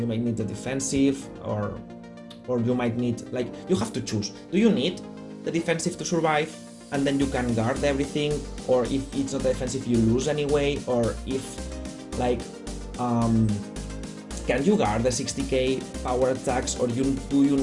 might need the defensive, or you might need, like, you have to choose. Do you need the defensive to survive, and then you can guard everything, or if it's not defensive, you lose anyway, or if, like, can you guard the 60k power attacks, or do you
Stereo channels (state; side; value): identical; both; correlation 1.00